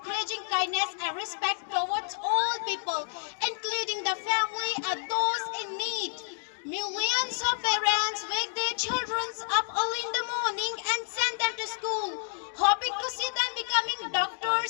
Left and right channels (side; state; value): right; silent; digital silence